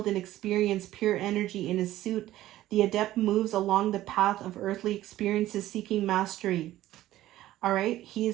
and experience pure energy in his suit, the adept moves along the path of earthly experiences seeking mastery. All right. He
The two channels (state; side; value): quieter; left; 14.7 dB